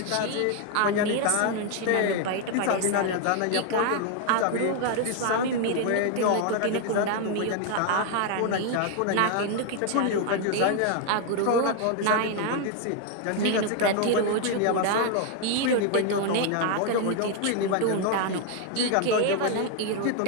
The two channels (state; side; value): different; both; correlation 0.00